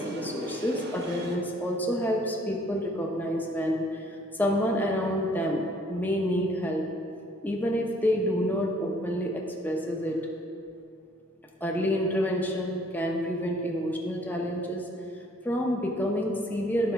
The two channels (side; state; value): both; normal; correlation 0.60